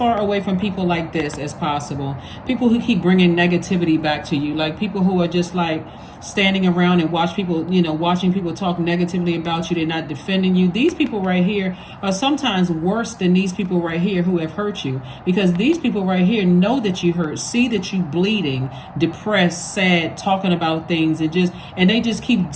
away from people like this as possible. People who keep bringing negativity back to you, like people who are just like standing around and watching people talk negatively about you. They're not defending you. These people right here are sometimes worse than these people right here who have hurt you, because these people right here know that you hurt, see that you bleeding, depressed, sad, talking about things, and they just keep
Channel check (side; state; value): both; identical; correlation 1.00